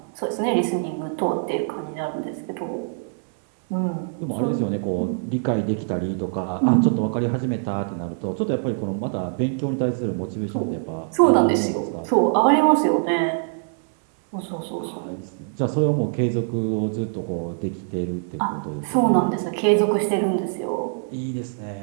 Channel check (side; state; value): left; silent; 58 dB below the other